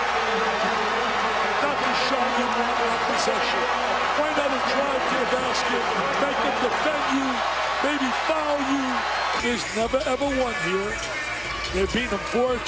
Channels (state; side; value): noise; left; hum, 20 dB below the sound